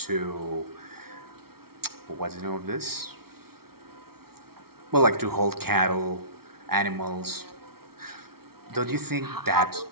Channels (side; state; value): left; late; 0.94 ms